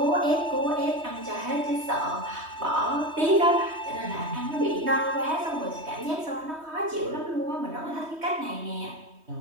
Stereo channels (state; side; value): late; left; 3.2 ms